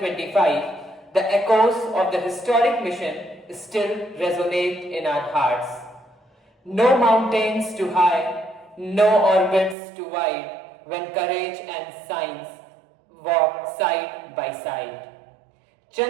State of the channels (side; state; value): left; drops out; at 9.8 s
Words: the echoes of the historic mission still resonate in our hearts. No mountains too high, no orbits too wide, when courage and science walk side by side.